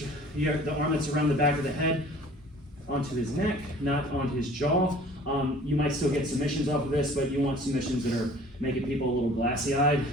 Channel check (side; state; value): both; normal; correlation 0.49